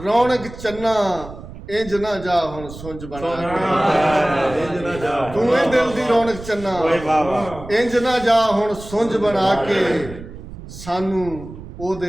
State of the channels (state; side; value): noise; right; rumble, 14 dB below the sound